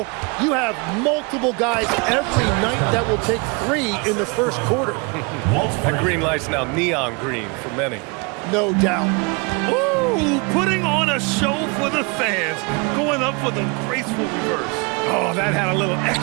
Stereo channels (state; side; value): quieter; left; 30.0 dB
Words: you have multiple guys every night that will take 3 in the first quarter. That green light's now neon green for many. No doubt. Ooh, putting on a show for the fans. Going up with a graceful reverse. Oh, that had a little